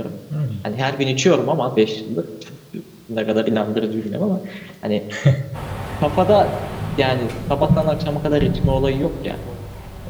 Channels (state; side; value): identical; both; correlation 1.00